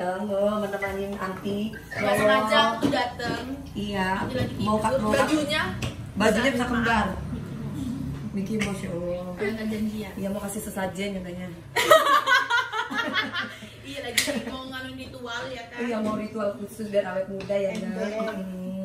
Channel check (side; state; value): both; identical; correlation 1.00